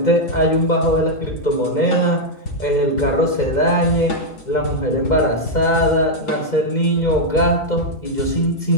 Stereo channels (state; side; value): late; right; 2.1 ms